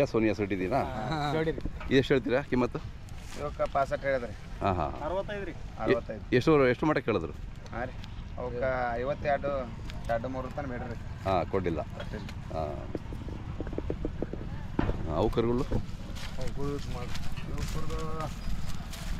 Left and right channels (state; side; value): identical; both; correlation 1.00